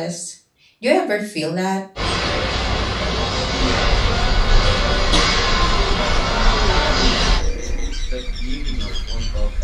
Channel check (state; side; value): identical; both; correlation 1.00